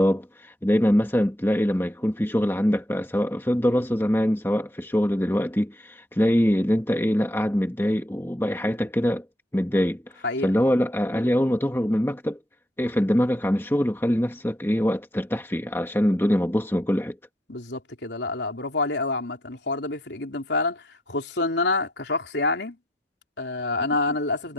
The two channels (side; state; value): both; normal; correlation 0.76